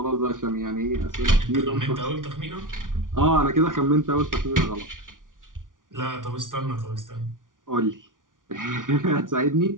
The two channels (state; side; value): late; left; 0.88 ms